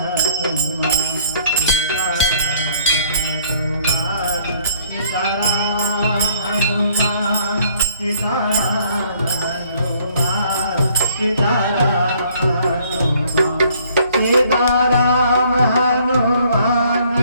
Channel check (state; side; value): inverted; both; correlation -0.61